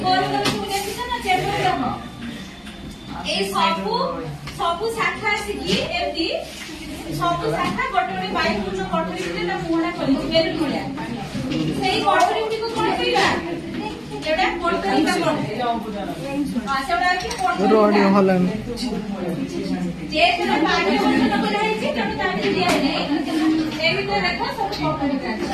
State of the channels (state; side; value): identical; both; correlation 1.00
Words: গোল গোল তুমি ଦେଖିଛ না চেপর দেখ এই সবু শাখা আসিকি এমতি সবু শাখা গোটে গোটে বায়ু পূর্ণ কোঠরি ভিতরে তা মুহা কৰিଛି বেলুন ভଳିଆ সেই কোঠরি গুটিକୁ কোন কইবা এটা কোঠরিকা সেটা কি কোঠরি হলাম যে যেন পানি বন্ধ করা হয়েছে তেমন তাকে দিয়া নেই এই ভিতরে দেখো সব কোঠরিকা